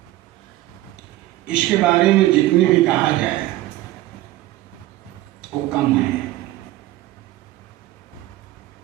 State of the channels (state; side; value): quieter; left; 16.2 dB